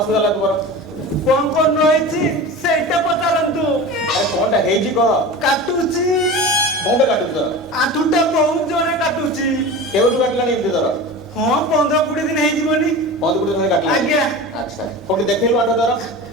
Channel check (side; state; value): both; normal; correlation 0.32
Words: है तुम्हारा कौन रही सेटा पचारंतु अरे कौन है जी कह काटुची कौन काटू तो आठुटा बहुत जोरे काटुची केवल काटला नहीं इतने जरा हां 15-20 दिन हे जीवनी बहुत गुड में काटला आज्ञा अच्छा कोटी देखिल बाटो जरा